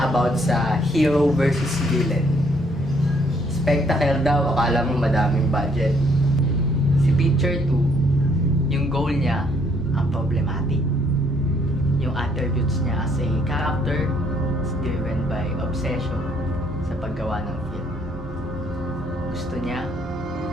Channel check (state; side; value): normal; both; correlation 0.67